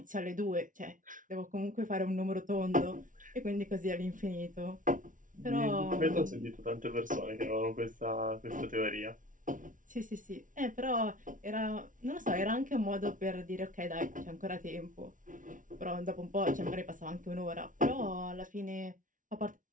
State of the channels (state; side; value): late; left; 0.38 ms